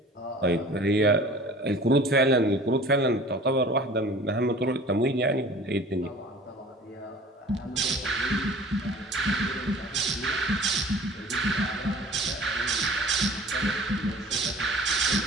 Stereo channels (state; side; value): normal; both; correlation 0.45